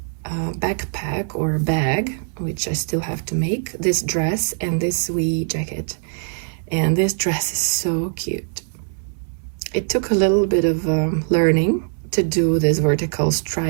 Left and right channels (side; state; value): left; silent; 65 dB below the other